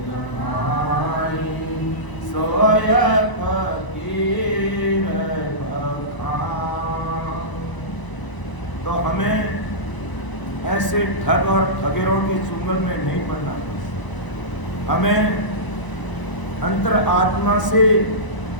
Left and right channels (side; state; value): right; late; 1.0 ms